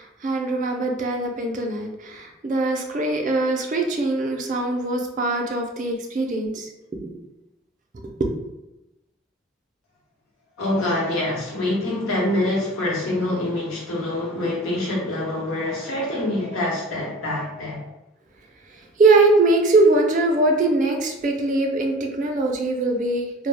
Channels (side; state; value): both; normal; correlation 0.41